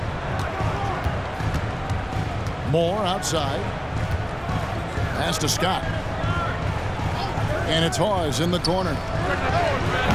Moore outside. Pass to Scott. And it's Hawes in the corner.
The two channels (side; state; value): both; identical; correlation 1.00